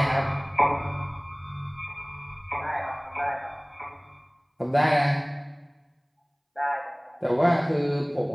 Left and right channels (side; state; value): both; identical; correlation 1.00